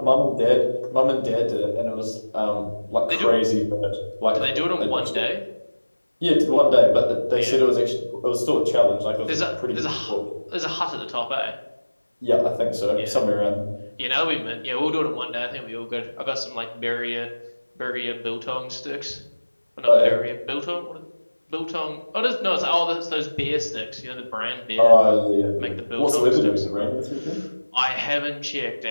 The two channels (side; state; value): both; inverted; correlation -1.00